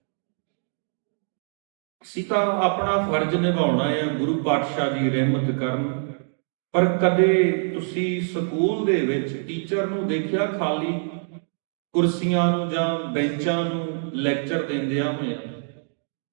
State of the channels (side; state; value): left; silent; digital silence